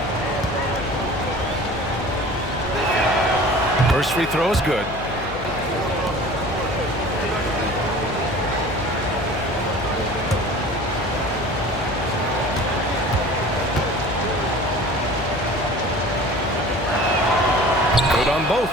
First free throw is good. Good on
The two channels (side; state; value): left; noise; hum, 12 dB below the sound